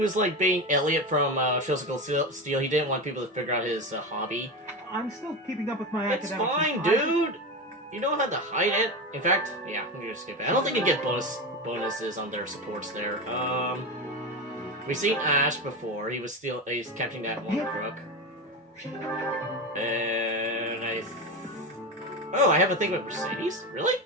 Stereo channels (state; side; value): normal; both; correlation 0.20